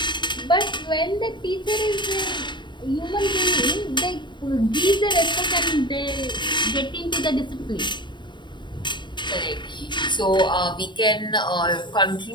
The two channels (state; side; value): late; right; 0.22 ms